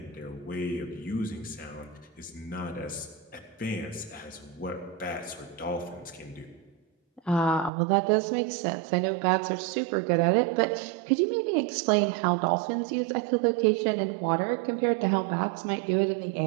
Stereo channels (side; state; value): left; drops out; at 7.7 s